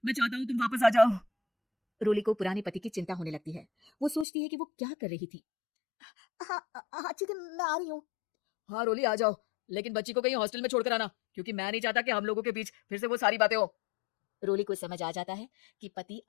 मैं चाहता हूँ तुम वापस आ जाओ। रोली को पुराने पति की चिंता होने लगती है। वो सोचती है कि वो क्या कर रही थी। हाँ हाँ ठीक है, मैं आ रही हूँ। हाँ रोली आ जाओ, लेकिन बच्ची को कहीं हॉस्टल में छोड़कर आना, क्योंकि मैं नहीं चाहता कि हम लोगों के बीच फिर से वो सारी बातें हो। रोली को समझ आ जाता है कि पति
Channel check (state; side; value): drops out; right; at 4.2 s